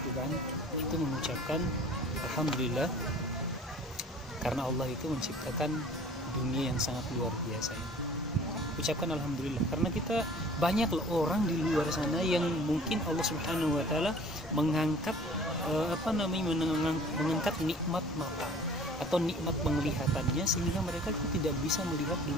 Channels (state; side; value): normal; both; correlation 0.49